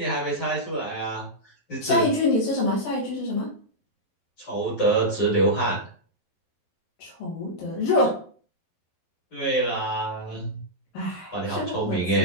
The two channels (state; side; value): late; right; 11 ms